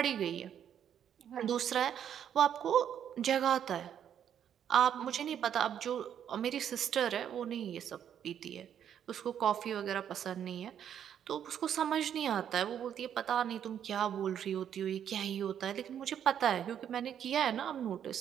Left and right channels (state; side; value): quieter; left; 9.3 dB